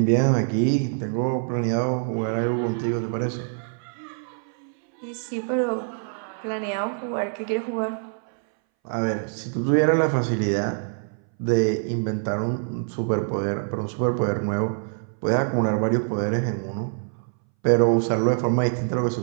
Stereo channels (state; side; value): silent; left; 61 dB below the other